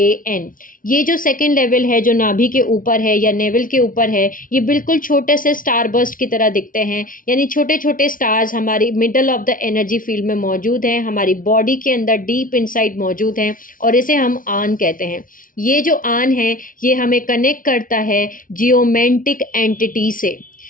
ये जो सेकेंड लेवल है जो नाभि के ऊपर है या नेवल के ऊपर है, ये बिल्कुल छोटे से स्टार बर्स्ट की तरह दिखते हैं, यानी छोटे छोटे स्टार्स हमारी middle of the energy field में मौजूद हैं, हमारी बॉडी के अंदर डीप इनसाइड मौजूद हैं, और इसे हम आन कहते हैं। ये जो आन है ये हमें कनेक्ट करता है जियोमेंटिक एंटिटी से।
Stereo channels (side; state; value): right; late; 0.39 ms